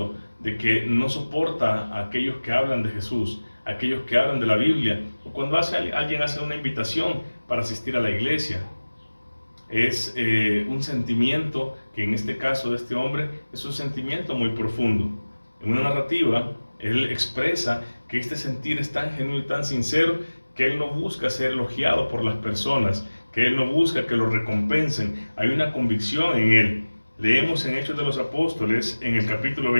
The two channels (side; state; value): both; inverted; correlation -1.00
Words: de que no soporta a aquellos que hablan de Jesús, a aquellos que hablan de la Biblia, o cuando alguien hace una invitación para asistir a la iglesia. Es un sentimiento que en este caso de este hombre es un sentimiento muy profundo. En una narrativa, él expresa que este sentir es tan genuino y tan sincero que él no busca ser elogiado por las personas, que él no busca que lo recompensen. Hay una convicción en él. Leemos en Hechos de los Apóstoles, en el capítulo